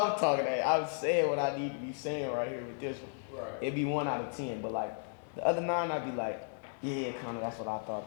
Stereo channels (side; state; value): right; silent; digital silence